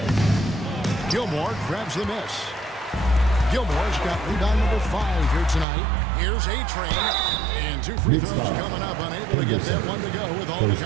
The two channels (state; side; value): drops out; left; at 5.7 s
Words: Gilmore grabs the miss. Gilmore's got rebound number 5 here tonight. Here's A-Train. And 2 free throws coming up. Unable to get that one to go with all the